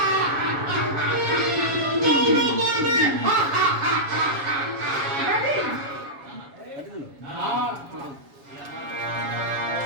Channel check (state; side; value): late; left; 7.2 ms